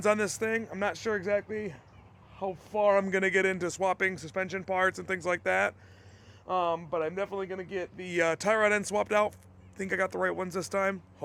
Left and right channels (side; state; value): both; identical; correlation 1.00